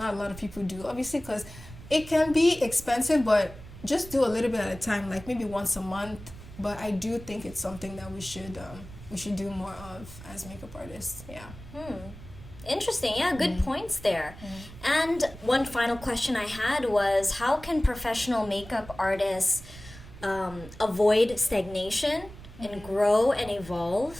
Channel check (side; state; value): right; noise; rumble, 16 dB below the sound